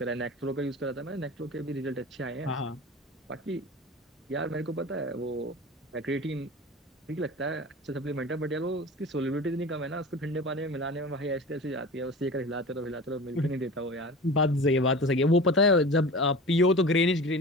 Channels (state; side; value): normal; both; correlation 0.35